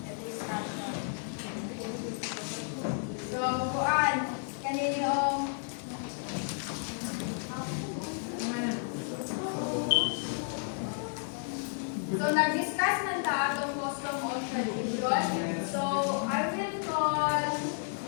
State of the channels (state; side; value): silent; right; 56 dB below the other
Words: discussion. So, kuan, kanino so, nag-discuss na ta itong custom or tradition. So, I will call